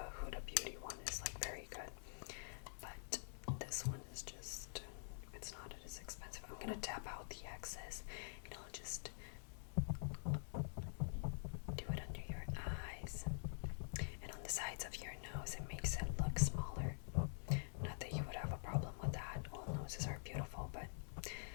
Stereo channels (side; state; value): right; silent; digital silence